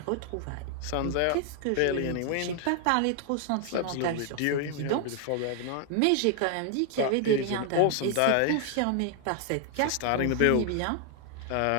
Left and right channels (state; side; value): different; both; correlation 0.00